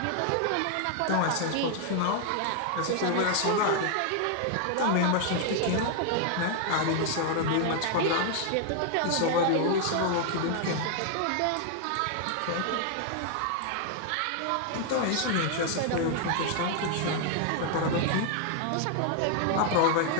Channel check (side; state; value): both; different; correlation 0.00